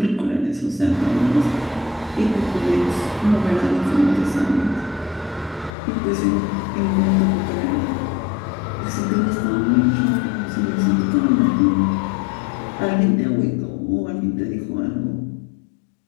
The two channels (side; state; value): right; drops out; at 5.7 s